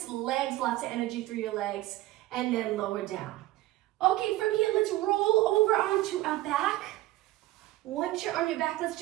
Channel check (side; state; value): left; quieter; 17.0 dB